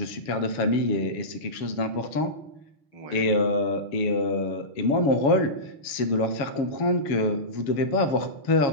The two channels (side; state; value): right; late; 7.2 ms